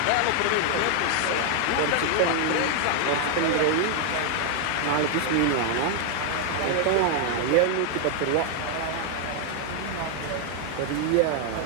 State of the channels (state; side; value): different; both; correlation 0.00